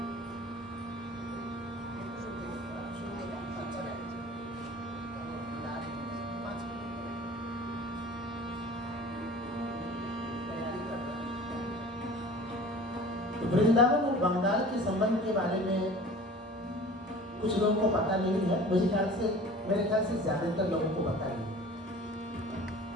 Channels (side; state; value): both; normal; correlation 0.43